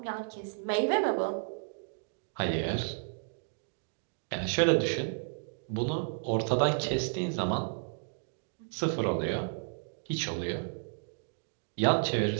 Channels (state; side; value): silent; left; digital silence